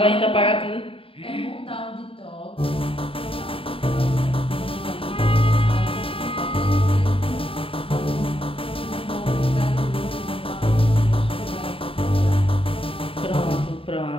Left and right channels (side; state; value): right; late; 0.27 ms